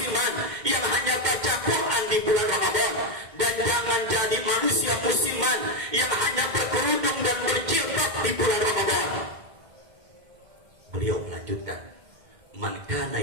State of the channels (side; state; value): left; late; 2.1 ms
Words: yang hanya baca Quran di bulan Ramadan. Dan jangan jadi manusia musiman yang hanya berkerudung dan berjilbab di bulan Ramadan. Beliau melanjutkan, man kana